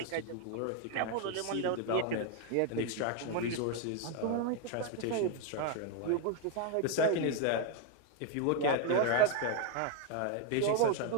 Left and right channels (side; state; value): both; different; correlation 0.01